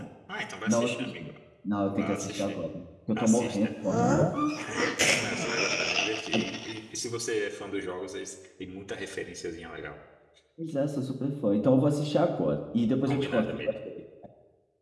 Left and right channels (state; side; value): identical; both; correlation 1.00